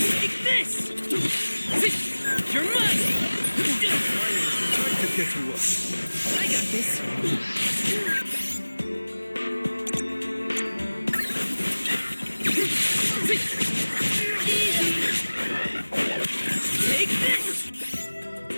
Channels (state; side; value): inverted; both; correlation -1.00